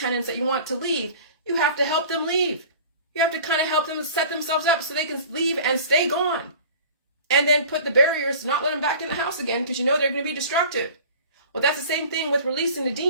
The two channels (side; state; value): both; inverted; correlation -0.43